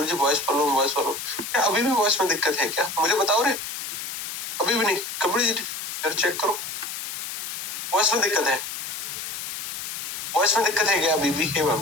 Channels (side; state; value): left; noise; hiss, 6 dB below the sound